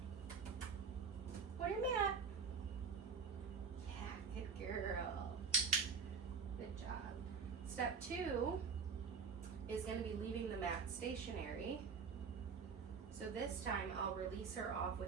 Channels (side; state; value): left; quieter; 5.4 dB